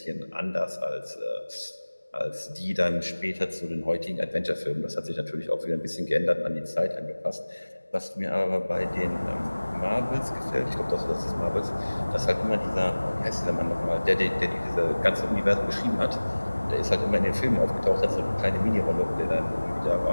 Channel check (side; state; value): both; inverted; correlation -1.00